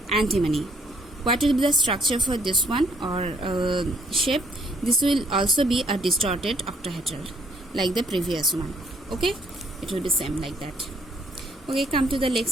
antimony. What will be the structure for this one, or shape? This will also be a distorted octahedral like the previous one. Okay, it will be same like that. Okay, come to the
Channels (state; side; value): normal; both; correlation 0.65